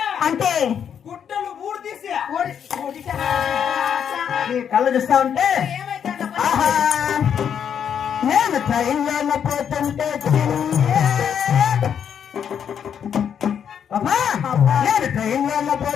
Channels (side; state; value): right; quieter; 8.2 dB